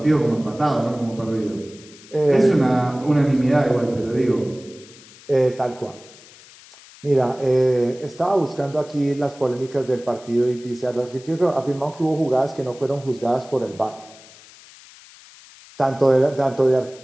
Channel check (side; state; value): left; noise; hiss, 22 dB below the sound